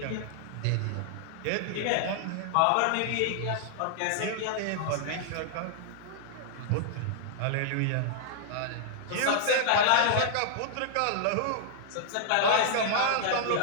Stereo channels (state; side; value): different; both; correlation -0.01